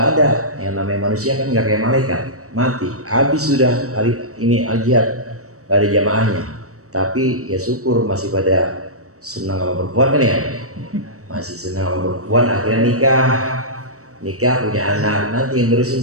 ada, yang namanya manusia kan nggak kayak malaikat, mati, habis sudah hari ini al-jihad, nggak ada jamaahnya. Tapi ya syukur masih pada senang sama perempuan kan ya, masih senang sama perempuan. Akhirnya nikah punya anak. Nanti yang nerusin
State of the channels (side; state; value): left; late; 0.65 ms